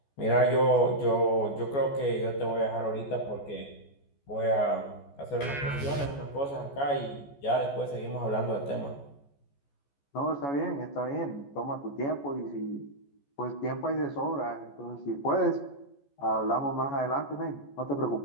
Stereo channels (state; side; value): late; right; 14 ms